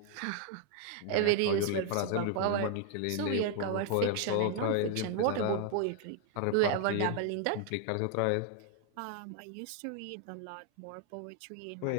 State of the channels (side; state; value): both; different; correlation 0.00